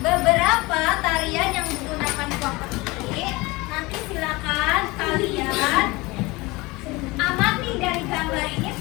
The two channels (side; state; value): right; quieter; 22.9 dB